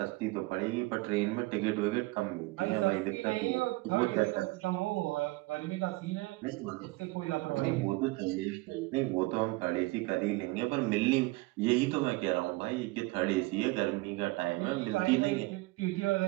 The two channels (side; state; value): left; quieter; 22.5 dB